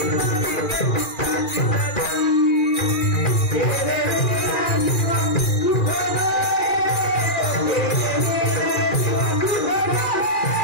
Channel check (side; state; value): right; late; 2.4 ms